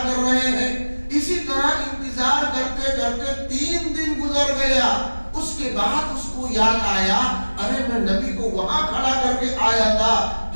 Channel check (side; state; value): both; inverted; correlation -1.00